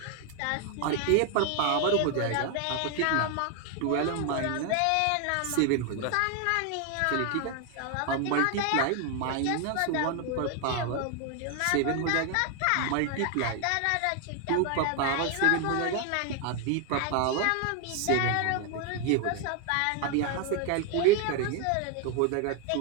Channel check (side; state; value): both; different; correlation 0.01